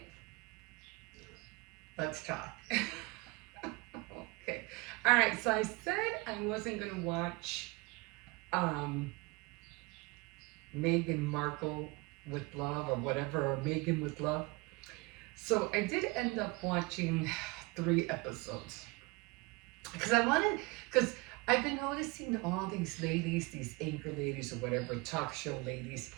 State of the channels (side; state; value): left; quieter; 25.9 dB